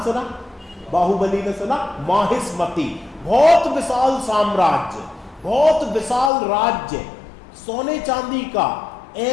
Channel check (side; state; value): right; drops out; at 6.3 s